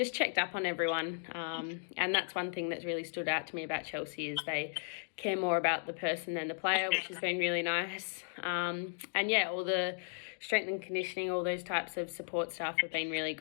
checked up on everyone. And that's one thing that's really stood out to me about Chelsea, is they care more about the person than the player, which has been really nice. And yeah, all the strength and conditioning, all those types of support staff have been really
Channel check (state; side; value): silent; right; digital silence